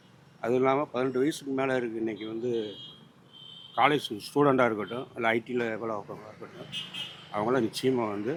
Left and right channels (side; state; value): both; identical; correlation 1.00